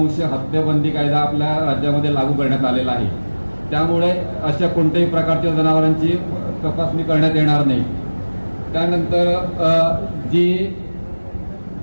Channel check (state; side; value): inverted; both; correlation -1.00